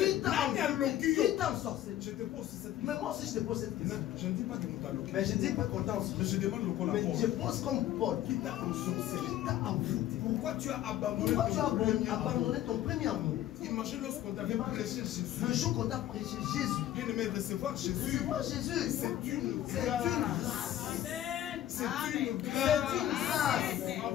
t'a ensorcelé? Je te pose cette question. Mais moi aussi je te pose cette question. Je ne dis pas que nous t'allons. Mais je ne dis pas qu'on t'a ensorcelé. Mais je demande le col à Mais je pose comme Paul. Qui t'a ensorcelé? Qui t'a envoûté? Pourquoi tu as abandonné ton premier amour? Imagine lorsqu'on t'avait prêché Jésus. Le jour qu'on t'a prêché Jésus. Bien aimé, recevoir Jésus. C'est une grâce. C'est une grâce.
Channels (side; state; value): right; quieter; 12.6 dB